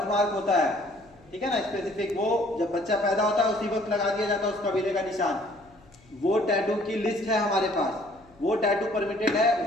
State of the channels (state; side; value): noise; left; hum, 28 dB below the sound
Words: मार्क होता है, ठीक है ना, स्पेसिफिक। वो जब बच्चा पैदा होता है उसी वक्त लगा दिया जाता है उस कबीले का निशान। वो टैटू की लिस्ट है हमारे पास, वो टैटू परमिटेड है,